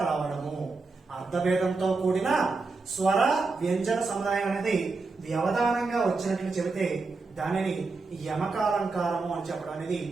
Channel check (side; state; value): left; quieter; 3.9 dB